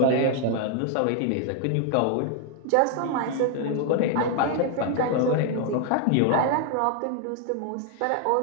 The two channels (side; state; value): both; different; correlation 0.00